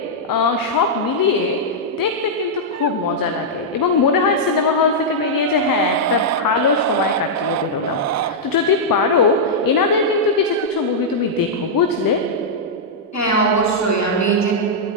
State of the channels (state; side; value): normal; both; correlation -0.07